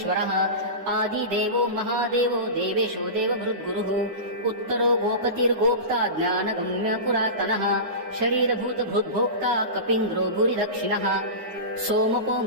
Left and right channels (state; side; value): late; left; 9.6 ms